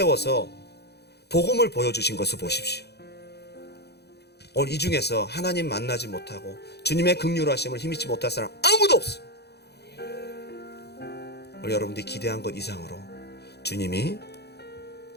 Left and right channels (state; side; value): late; right; 0.48 ms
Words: 복음을 보여주신 것을 보십시오. 오늘 이 중에서 하나님 만나지 못하고 주님의 긍휼하심을 힘입지 못할 사람 아무도 없어요. 오늘 여러분들이 기대한 것 이상으로 주님이